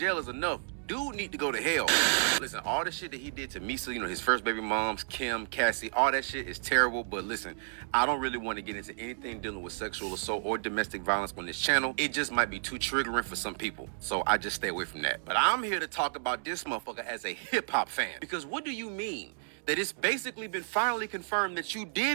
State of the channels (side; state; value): left; silent; digital silence